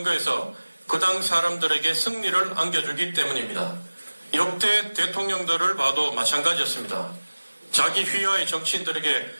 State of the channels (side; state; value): both; inverted; correlation -1.00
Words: 그 당 사람들에게 승리를 안겨주기 때문입니다. 역대 대통령들을 봐도 마찬가지였습니다. 자기 휘하의 정치인들에게